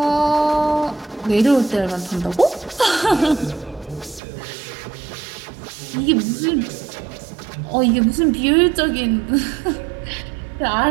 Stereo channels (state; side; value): drops out; left; at 4.2 s